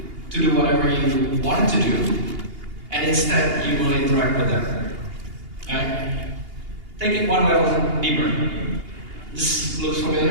to do whatever you wanted to do, and instead you will interact with them. Right? Take it one level deeper. This looks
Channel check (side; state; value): left; late; 2.8 ms